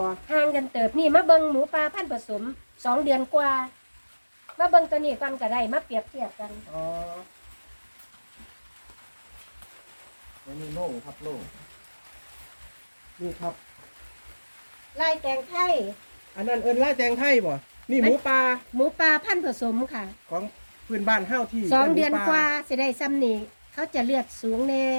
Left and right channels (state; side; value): inverted; both; correlation -1.00